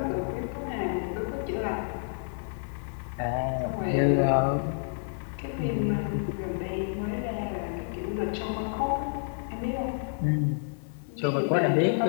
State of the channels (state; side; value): silent; right; digital silence